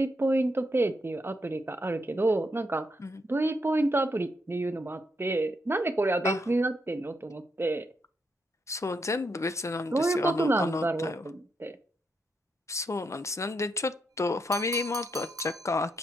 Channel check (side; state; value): both; normal; correlation 0.80